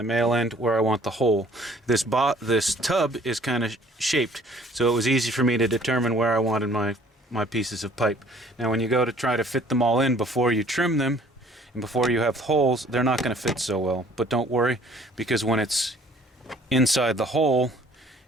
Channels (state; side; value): normal; both; correlation 0.56